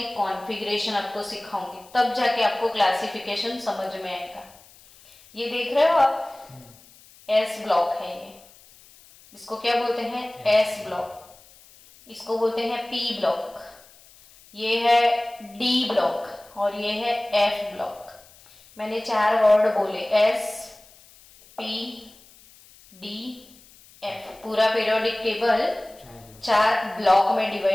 कॉन्फ़िगरेशन आपको सिखाऊंगी, तब जाके आपको क्लासिफिकेशन समझ में आएगा। ये देख रहे हो आप, एस ब्लॉक है ये, इसको क्या बोलते हैं? S block. इसको बोलते हैं पी ब्लॉक, ये है डी ब्लॉक, और ये है एफ ब्लॉक। मैंने 4 वर्ड बोले, एस पी डी एफ। पूरा पीरियोडिक टेबल 4 ब्लॉक में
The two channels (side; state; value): left; noise; hiss, 25 dB below the sound